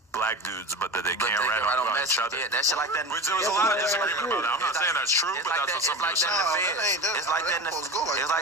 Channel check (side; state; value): both; normal; correlation 0.30